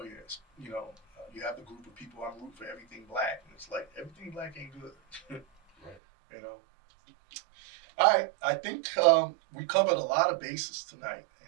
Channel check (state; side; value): drops out; left; at 6.0 s